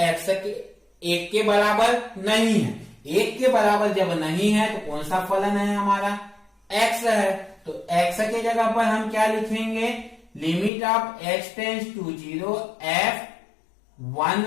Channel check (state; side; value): drops out; right; at 10.7 s